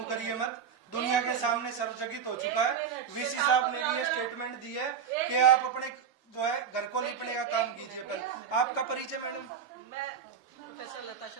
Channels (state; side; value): quieter; left; 7.2 dB